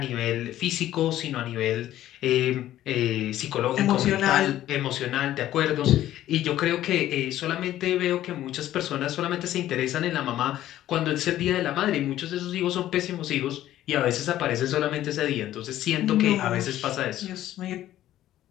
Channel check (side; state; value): right; quieter; 13.2 dB